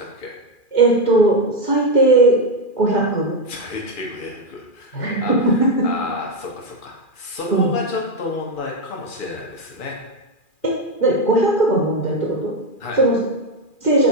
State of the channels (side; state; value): right; late; 2.4 ms